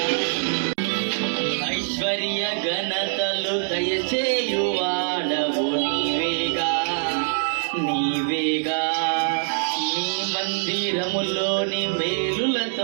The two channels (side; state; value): left; silent; digital silence